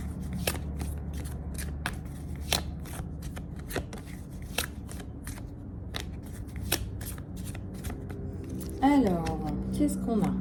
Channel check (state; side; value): identical; both; correlation 1.00